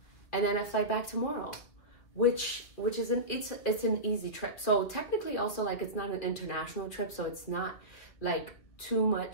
then I fly back tomorrow, which is it's an easy trip. So technically also, like, it's not an international trip, so it's not like too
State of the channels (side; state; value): right; late; 2.6 ms